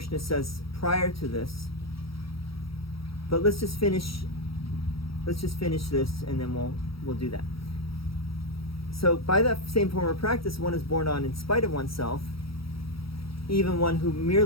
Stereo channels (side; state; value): right; late; 0.75 ms